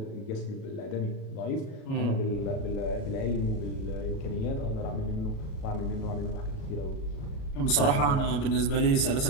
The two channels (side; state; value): right; late; 37 ms